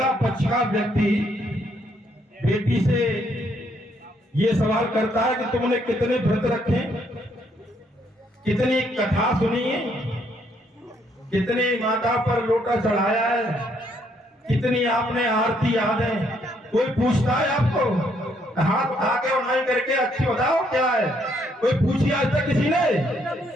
पक्ष का व्यक्ति बेटी से ये सवाल करता है कि तुमने कितने व्रत रखे, कितनी कथा सुनी है, कितनी माता पर लोटा चढ़ाया है, कितनी आपने आरती याद है। कोई पूछता है आपको, हाथ आगे उठाई करके अच्छी बताओ क्या है, कोई पूछी आज तक किसी ने?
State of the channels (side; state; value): both; normal; correlation 0.71